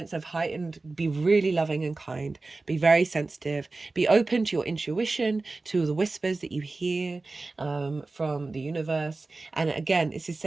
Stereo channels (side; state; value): left; quieter; 3.5 dB